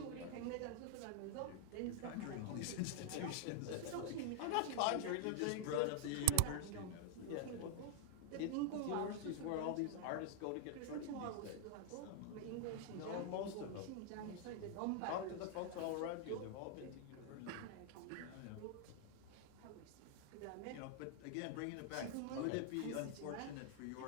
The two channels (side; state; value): both; different; correlation 0.00